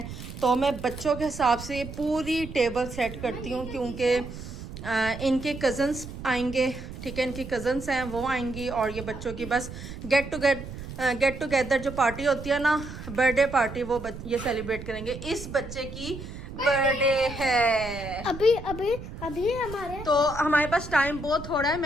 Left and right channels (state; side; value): noise; right; rumble, 11 dB below the sound